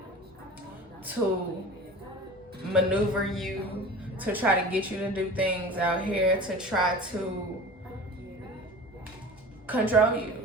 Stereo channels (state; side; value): normal; both; correlation 0.38